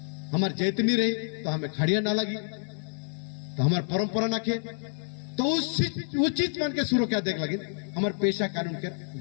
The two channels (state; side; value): silent; right; 59 dB below the other